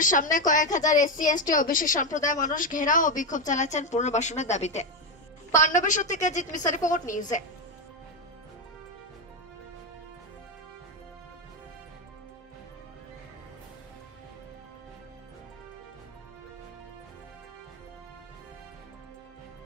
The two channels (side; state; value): both; normal; correlation 0.09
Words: সামনে কয়েক হাজার এসসি এসটি ওবিসি সম্প্রদায়ের মানুষ ঘেরাও ও বিক্ষোভ চালাচ্ছেন পুনর্বাসনের দাবিতে। পাণ্ডবেশ্বর থেকে জিৎ মিশ্রা রিপোর্ট, নিউজে।